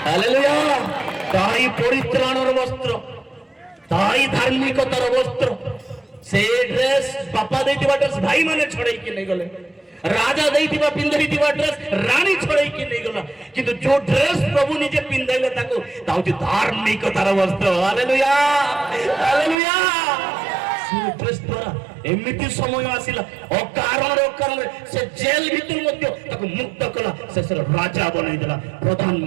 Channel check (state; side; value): drops out; left; at 19.6 s